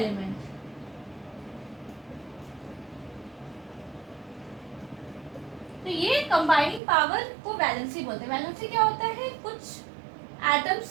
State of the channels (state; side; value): drops out; left; at 6.8 s